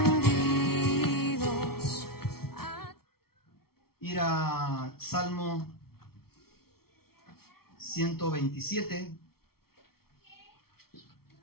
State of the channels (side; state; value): right; late; 0.94 ms